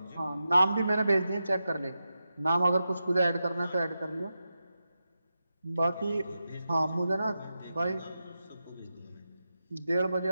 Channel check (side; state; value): both; inverted; correlation -0.90